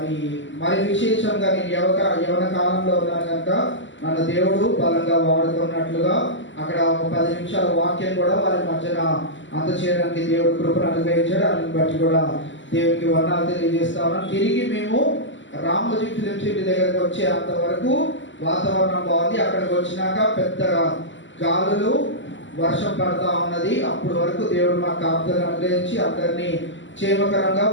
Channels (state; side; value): late; right; 0.54 ms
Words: మరి విశేషంగా నేను యవన కాలంలో ఉన్నాను కనుక నన్ను దేవుడు బలంగా వాడుకున్నట్లుగా అక్కడ ఒక 10 నిమిషాల వాక్యం కూడా వారి మధ్యన అందచేయడానికి దేవుడు కృపను అనుగ్రహించాడు. దాన్ని బట్టి కూడా దేవునికి వందనాలు తెలియజేస్తా ఉన్నాం. తిరిగి మేము రామోజీ ఫిలిం సిటీ దగ్గరకు వచ్చే అంతవరకు వాతావరణం బాగుంది. అక్కడికి వచ్చినాక పెద్దగా గాలులు, వర్షం పడతా ఉన్నది. అప్పటి వరకు దేవుడు మా కాపుదలను అనుగ్రహించి అందరినీ క్షేమకరంగా